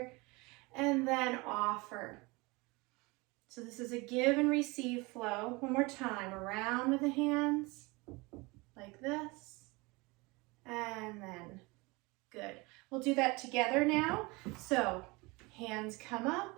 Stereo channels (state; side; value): quieter; left; 25.0 dB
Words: and then offer. So this is a give and receive flow. One more time. Around with the hands, like this, and then good. We'll do that together now. So hands come up,